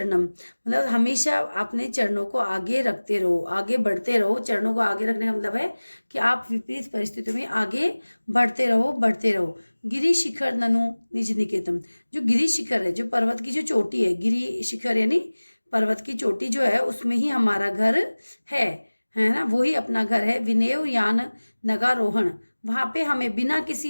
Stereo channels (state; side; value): inverted; both; correlation -1.00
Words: मतलब हमेशा अपने चरणों को आगे रखते रहो, आगे बढ़ते रहो। चरणों को आगे रखने का मतलब है कि आप विपरीत परिस्थितियों में आगे बढ़ते रहो, बढ़ते रहो। गिरि शिखर ननु निज निकेतम, जो गिरि शिखर है, जो पर्वत की जो चोटी है, गिरि शिखर यानी पर्वत की चोटी जो है, उसमें ही हमारा घर है ना, वो ही अपना घर है। विनेव यान नगारोहण, वहां पे हमें बिना किसी